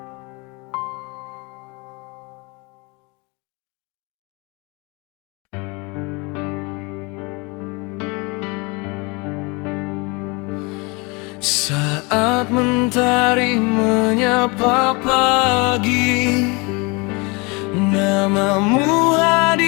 Saat mentari menyapa pagi, namamu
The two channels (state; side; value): quieter; right; 28.3 dB